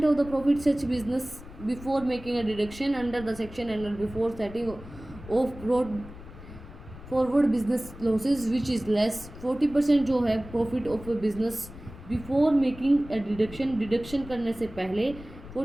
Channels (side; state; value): left; noise; rumble, 16 dB below the sound